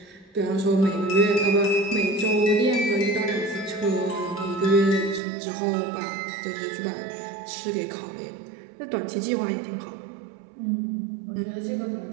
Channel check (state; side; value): drops out; left; at 5.2 s